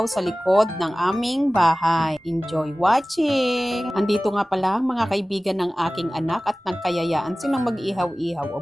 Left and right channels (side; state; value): both; normal; correlation 0.98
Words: sa likod ng aming bahay. Enjoy watching! Andito nga pala mga kaibigan ng aking anak at nagkayayaan silang mag-ihaw-ihaw o